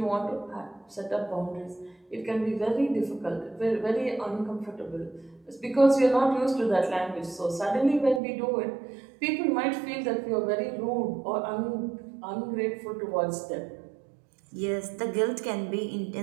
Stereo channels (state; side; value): drops out; left; at 8.2 s